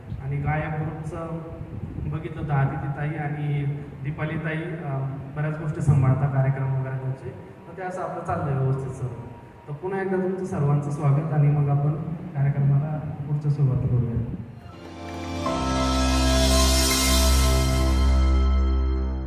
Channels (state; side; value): identical; both; correlation 1.00